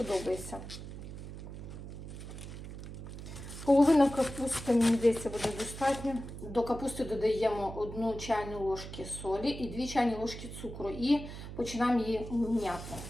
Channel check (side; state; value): right; noise; hum, 10 dB below the sound